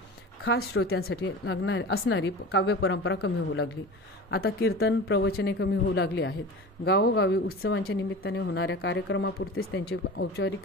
खास श्रोत्यांसाठी असणारी काव्य परंपरा कमी होऊ लागली। आता कीर्तन, प्रवचने कमी होऊ लागली आहेत। गावोगावी उत्सवांच्या निमित्ताने होणाऱ्या कार्यक्रमापुरतेच त्यांचे औपचारिक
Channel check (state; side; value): normal; both; correlation 0.34